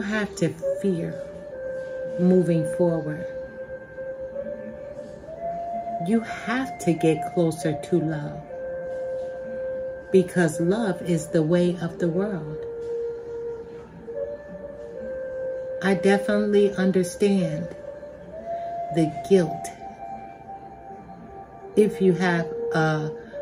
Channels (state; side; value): identical; both; correlation 1.00